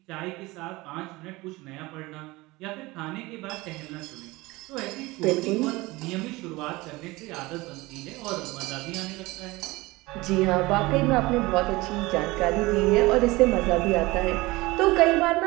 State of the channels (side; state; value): left; quieter; 21.3 dB